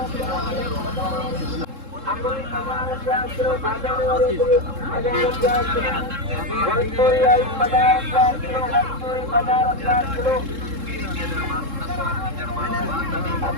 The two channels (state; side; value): late; left; 3.7 ms